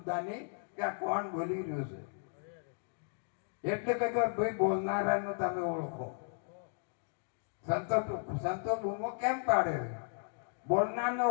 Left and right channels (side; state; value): right; silent; digital silence